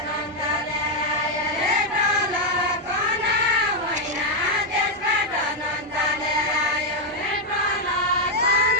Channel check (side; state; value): both; normal; correlation 0.01